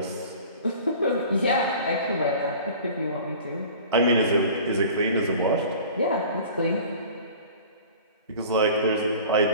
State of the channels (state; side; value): inverted; both; correlation -0.43